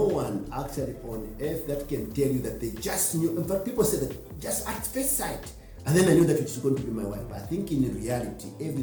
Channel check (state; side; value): identical; both; correlation 1.00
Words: one actually on earth that can tell you that they just knew. In fact, people say that just at first sight, and then I knew that she's going to be my wife. But I think in reality,